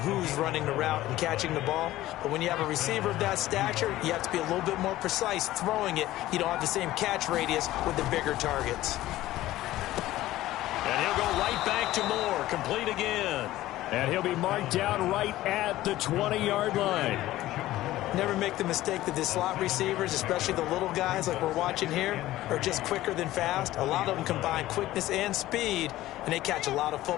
running the route and catching the ball. But when you have a receiver of that stature, you have to be a little bit more precise throwing it. You don't have the same catch radius with the bigger targets. And he'll go right back to Moore. Complete again. And he'll be marked down right at the 20-yard line. Never make the mistake that the slot receivers, especially the little guys like we're watching here, are just quicker than fast. A lot of them combine quickness and speed, and they catch a lot of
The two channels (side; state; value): right; quieter; 15.6 dB